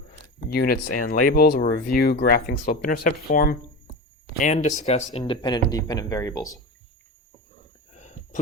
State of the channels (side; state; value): both; normal; correlation 0.25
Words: units and labels. We'll review graphing slope-intercept form, and discuss independent and dependent variables.